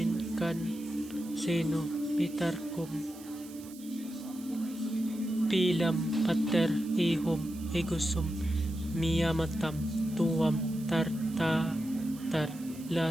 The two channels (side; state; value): right; noise; hiss, 19 dB below the sound